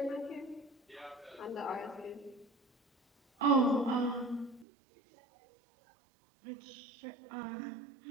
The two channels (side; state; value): left; drops out; at 4.7 s